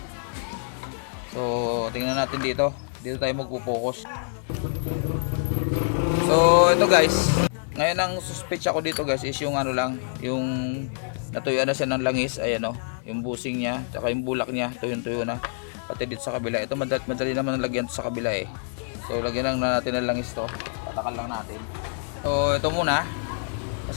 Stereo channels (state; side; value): silent; right; 61 dB below the other